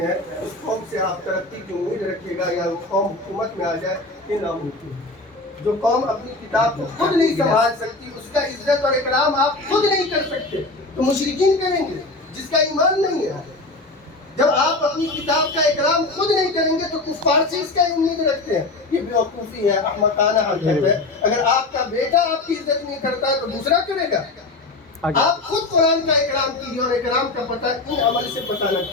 ہیں. اس قوم سے آپ ترقی کی امید رکھیے گا یا وہ قوم حکومت میں آ جائے، یہ ناممکن ہے. جو قوم اپنی کتاب کو خود نہیں سنبھال سکتی، اس کا عزت اور اکرام آپ خود نہیں کر سکتے تو مشرکین کریں گے جس کا ایمان نہیں ہے. جب آپ اپنی کتاب کا اکرام خود نہیں کریں گے تو کفار سے اس کا امید رکھتے ہیں. یہ بیوقوفی ہے، احمقانہ حرکت ہے. اگر آپ کا بیٹا آپ کی عزت نہیں کرتا ہے تو دوسرا کرے گا. آپ خود قرآن کا اکرام کیجیے، اور اکرام کا پتہ ان عمل سے پتہ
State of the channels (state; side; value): quieter; right; 3.1 dB